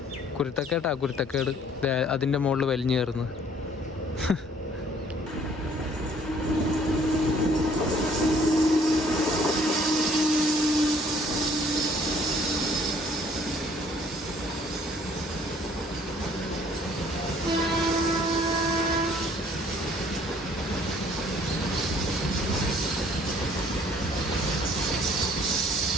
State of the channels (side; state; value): both; normal; correlation 0.58